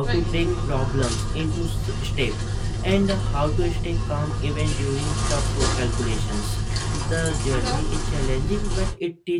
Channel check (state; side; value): identical; both; correlation 1.00